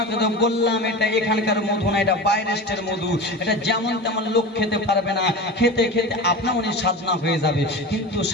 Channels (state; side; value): normal; both; correlation 0.30